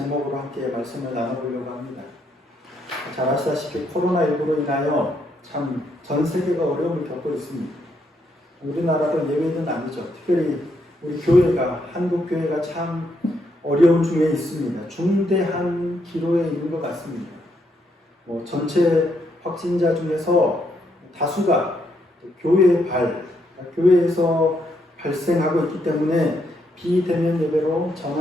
함께 말씀을 나눠보려고 합니다. 잘 아시다시피 코로나19로 인하여 참 전 세계가 어려움을 겪고 있습니다. 우리나라도 예외는 아니죠. 특별히 우리 교회가, 한국교회가 참 어려움 중에 있습니다. 중대한 기로에 있는 것 같습니다. 전체 확진자 중에서 다수가 교회에서 발생하고 있기 때문에 비대면 예배로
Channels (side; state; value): both; normal; correlation 0.76